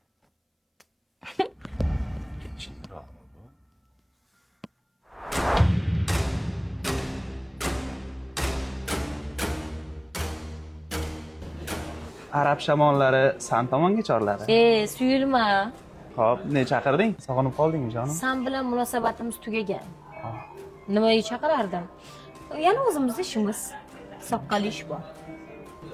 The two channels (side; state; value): both; identical; correlation 1.00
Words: Chinroqmi bu? Arab shamollari san tomonga chorladi. Suyulma. Xo'p, ne chaqirding? Sog'inib qoldingmi jonim? San bilan munosabatimiz tugagan. Nimaga chaqirardim? Yana o'zimizning ishimiz. Soqqali ish bor.